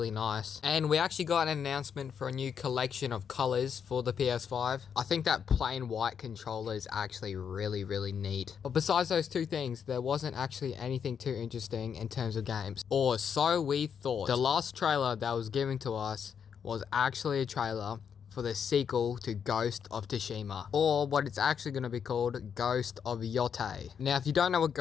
nice. And we actually got an announcement for a new collection of colors for the PS5. I think that plain white controller is actually really neat. But besides those two things, there wasn't actually anything too interesting in terms of games. Or so we thought. The last trailer that was given to us was actually a trailer for the sequel to Ghost of Tsushima, or what it's actually going to be called, Ghost of Yotei. Now, if you don't know what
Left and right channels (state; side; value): quieter; right; 7.4 dB